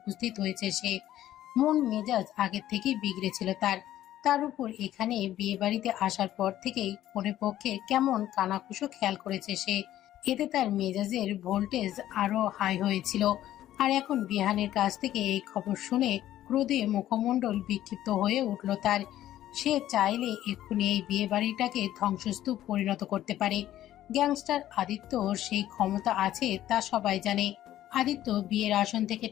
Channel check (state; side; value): quieter; right; 13.0 dB